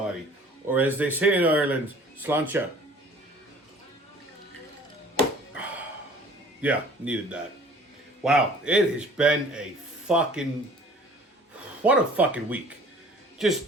Or as they say in Ireland, slancha. Yeah, needed that. Wow, it has been a fucking... What a fucking week.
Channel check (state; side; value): normal; both; correlation 0.50